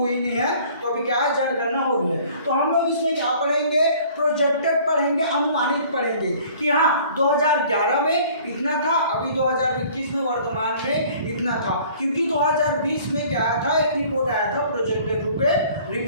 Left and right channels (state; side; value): inverted; both; correlation -0.52